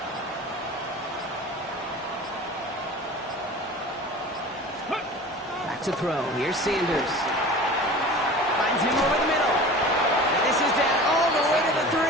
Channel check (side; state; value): both; normal; correlation 0.38